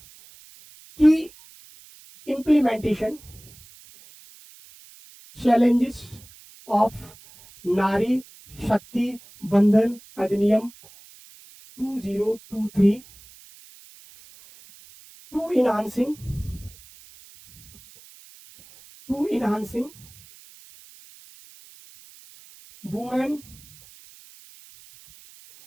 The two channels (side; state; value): right; noise; hiss, 23 dB below the sound